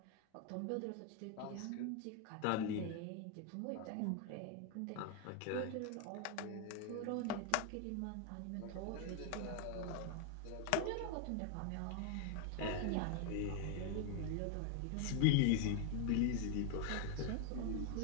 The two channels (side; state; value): both; different; correlation 0.01